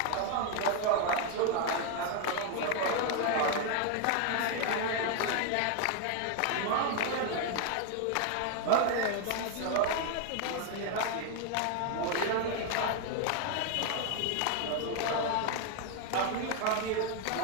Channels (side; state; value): both; different; correlation 0.01